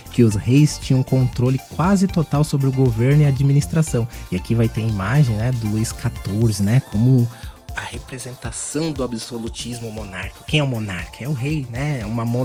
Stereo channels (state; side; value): identical; both; correlation 1.00